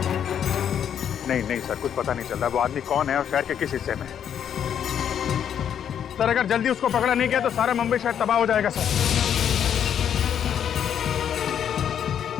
नहीं सर, कुछ पता नहीं चल रहा वो आदमी कौन है और शहर के किस हिस्से में। सर अगर जल्दी उसको पकड़ा नहीं गया तो सारा मुंबई शहर तबाह हो जाएगा सर।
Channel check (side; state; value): right; quieter; 8.9 dB